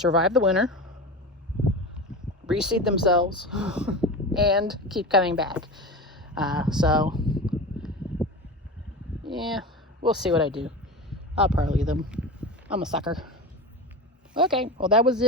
the winter, reseed themselves, and keep coming back. So, yeah, we'll see what I do. I'll probably leave them. I'm a sucker. Okay, well that was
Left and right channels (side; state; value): both; normal; correlation 0.26